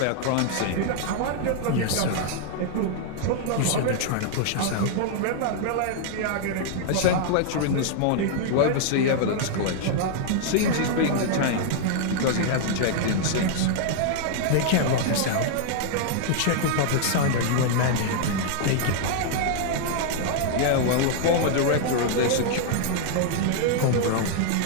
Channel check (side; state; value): both; different; correlation -0.01